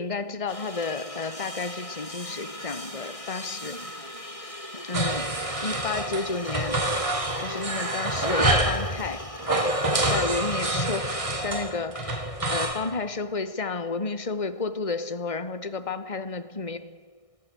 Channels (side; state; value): right; late; 1.6 ms